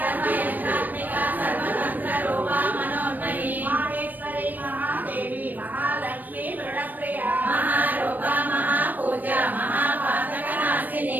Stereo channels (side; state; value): left; late; 0.087 ms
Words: సర్వతంత్ర రూపా మనోన్మయీ మహేశ్వరి మహాదేవి మహాలక్ష్మి దృఢప్రియ మహారూప మహాపూజ మహాపాతకనాశిని